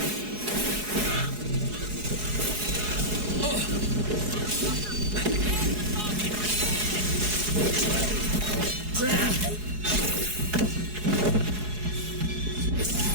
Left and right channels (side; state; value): left; late; 4.7 ms